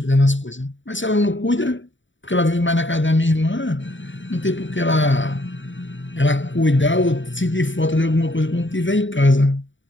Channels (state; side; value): late; right; 0.55 ms